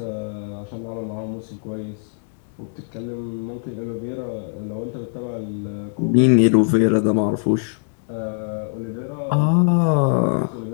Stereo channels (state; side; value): silent; right; digital silence